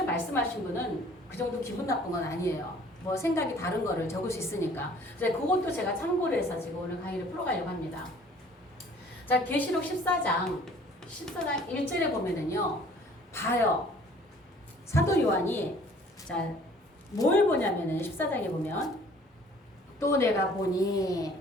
말씀하신 분은 그 정도 기분 나쁜 건 아니에요. 뭐 생각이 다른 거를 적을 수 있으니까. 그래서 그것도 제가 참고를 해서 지금 오늘 강의를 풀어가려고 합니다. 자, 계시록 14장 1절에 보면은요. 봐요. 사도 요한이 자, 뭘 보냐면은 14장에 보면 또 내가 보니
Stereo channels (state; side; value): normal; both; correlation 0.54